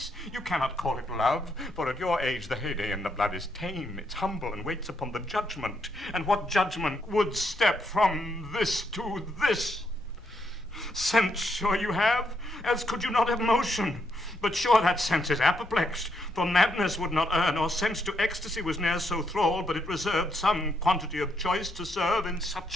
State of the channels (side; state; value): both; normal; correlation 0.77